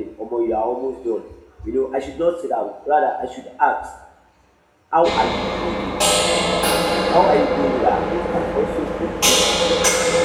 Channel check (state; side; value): identical; both; correlation 1.00